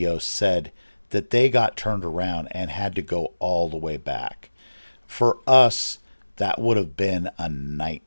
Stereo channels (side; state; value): both; inverted; correlation -1.00